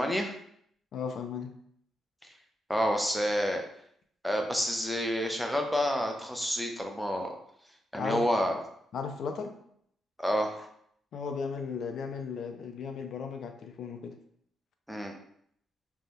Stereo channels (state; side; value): normal; both; correlation 0.85